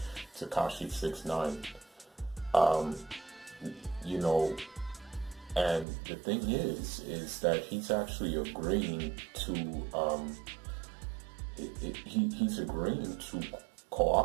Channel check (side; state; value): left; drops out; at 5.9 s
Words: 6ix9ine. You know, and the thing is that he's actually agreeing to he's agreeing to